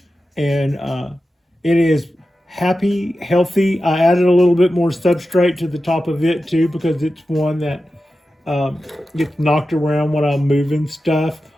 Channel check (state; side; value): normal; both; correlation 0.92